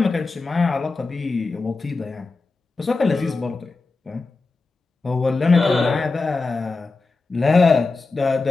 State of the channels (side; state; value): right; quieter; 3.8 dB